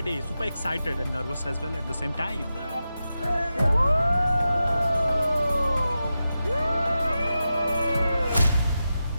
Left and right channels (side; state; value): both; inverted; correlation -0.91